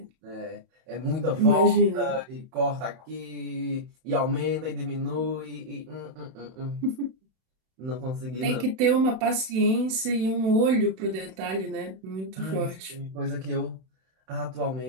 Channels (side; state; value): left; late; 31 ms